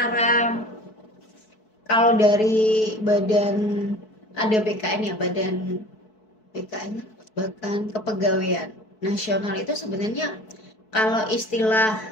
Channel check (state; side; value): late; right; 4.6 ms